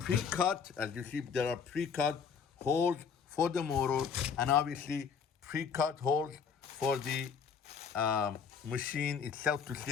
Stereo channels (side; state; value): right; quieter; 6.5 dB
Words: As you see, there are pre-cut holes for the motor, and obviously pre-cut holes for the machine itself to